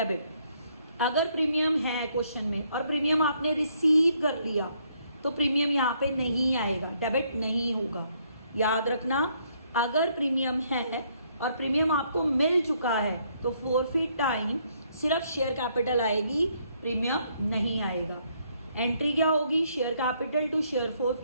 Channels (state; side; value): inverted; both; correlation -0.70